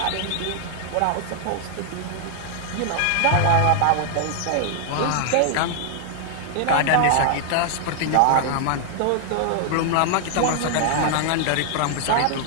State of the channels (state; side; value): different; both; correlation 0.00